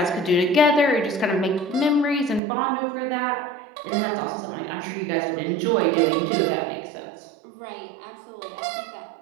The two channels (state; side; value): drops out; left; at 2.4 s